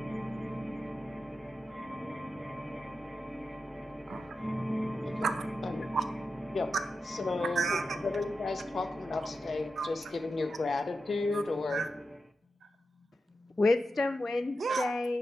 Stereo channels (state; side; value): normal; both; correlation 0.89